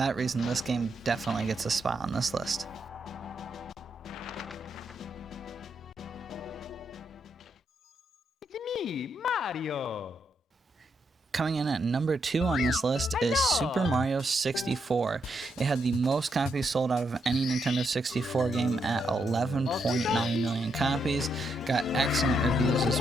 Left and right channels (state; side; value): normal; both; correlation 0.79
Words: reason, this game definitely gets a spot on this list. Mario. Coming in at number 2 on this list is Super Mario 64. It had the most copies sold out of any Nintendo 64 game at 11.9 million copies. Got excellent reviews